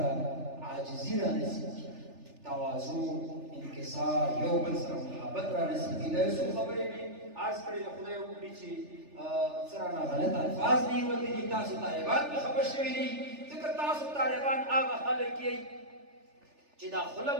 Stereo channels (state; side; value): late; left; 3.4 ms